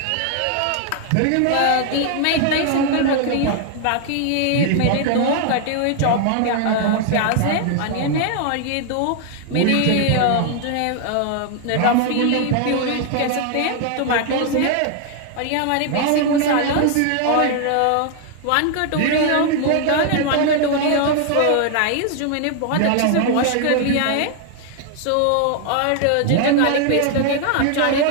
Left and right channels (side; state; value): both; different; correlation 0.00